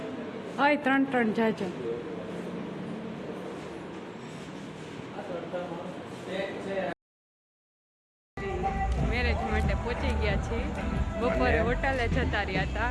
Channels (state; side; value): identical; both; correlation 1.00